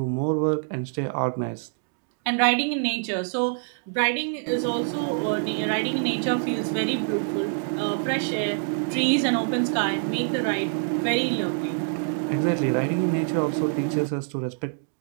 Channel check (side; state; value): left; silent; digital silence